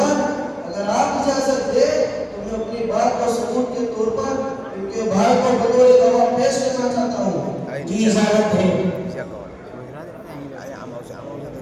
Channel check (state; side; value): identical; both; correlation 1.00